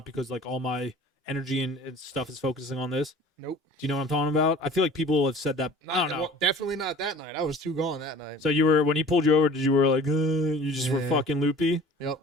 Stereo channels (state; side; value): normal; both; correlation 0.45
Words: because like all my energy and stuff is focusing on this? Nope. Do you know what I'm talking about? I feel like people have said that. I don't know. Well, definitely not that night. I was too gone that night. So you were, when he pulled you over, did you were like, you just were Yeah. fucking loopy? Yep.